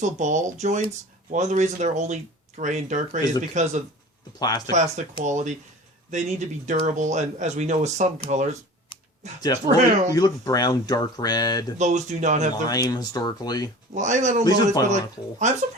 ball joints. One of the reasons they're only gray and dark gray is because of the plastic quality. They need to be durable, and as we know with some colors. Definitely. You look brown, dark red. Those do not have lime historically. Lime, I don't know. But I'm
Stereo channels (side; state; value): both; normal; correlation 0.40